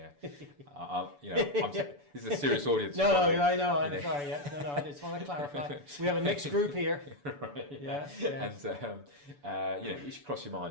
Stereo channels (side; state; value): left; late; 6.9 ms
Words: This is a serious audience. No, I know. I'm sorry. Yeah, no. I just want to clarify. We have a mixed group here. Right. Yeah. And you should cross your